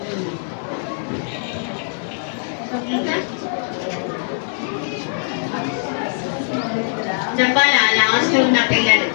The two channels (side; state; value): right; silent; 65 dB below the other